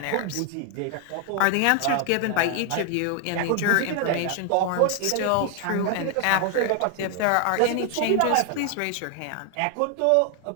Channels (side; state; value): both; different; correlation 0.00